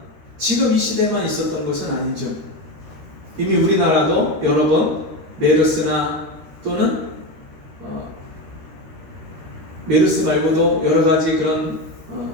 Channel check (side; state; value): left; late; 13 ms